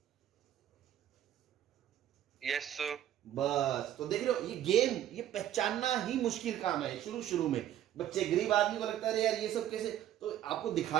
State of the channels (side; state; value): left; quieter; 11.7 dB